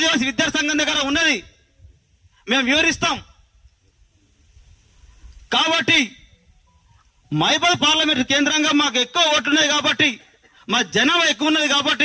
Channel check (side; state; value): both; identical; correlation 1.00